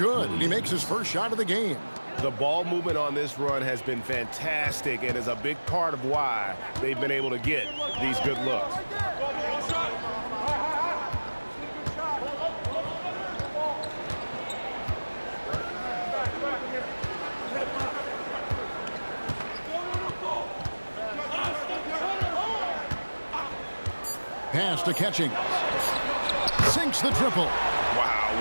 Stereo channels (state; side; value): inverted; both; correlation -1.00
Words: He makes his first shot of the game. The ball movement on this run has been fantastic and is a big part of why they've been able to get these good looks. Pass to Catching. Sinks the triple.